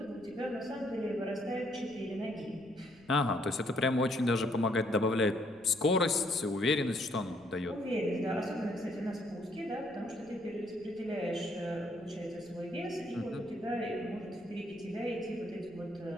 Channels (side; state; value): left; noise; rumble, 28 dB below the sound